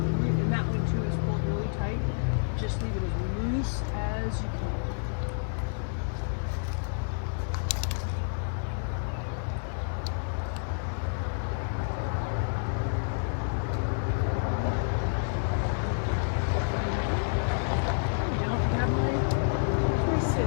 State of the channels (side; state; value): right; silent; digital silence